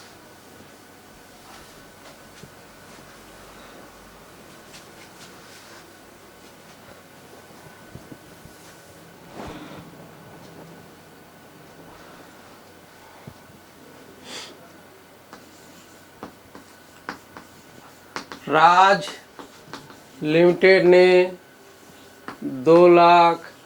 राज लिमिटेड ने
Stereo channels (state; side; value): identical; both; correlation 1.00